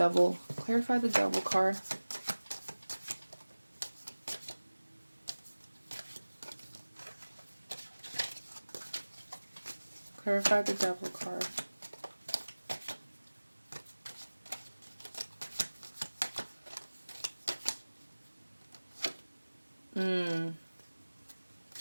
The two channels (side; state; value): both; inverted; correlation -1.00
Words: card. Clarify the Devil card.